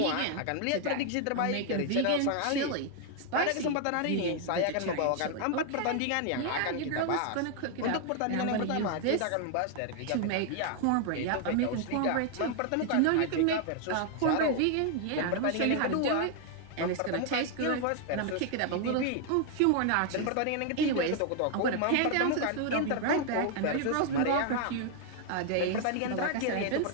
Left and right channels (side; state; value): both; different; correlation 0.00